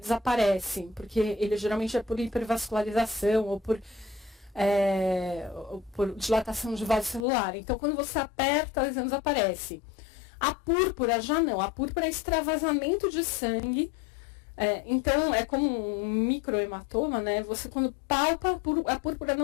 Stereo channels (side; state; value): right; drops out; at 7.2 s